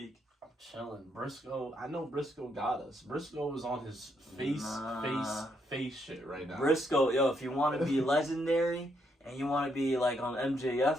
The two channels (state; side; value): normal; both; correlation 0.76